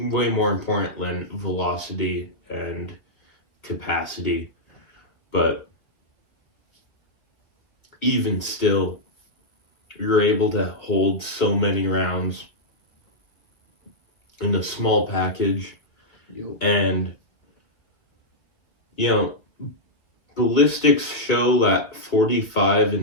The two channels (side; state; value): right; late; 2.2 ms